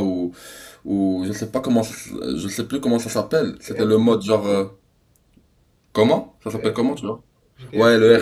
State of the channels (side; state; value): both; identical; correlation 1.00